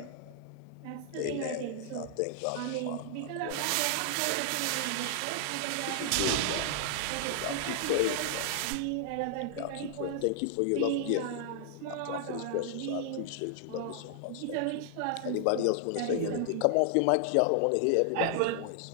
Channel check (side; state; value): both; different; correlation 0.00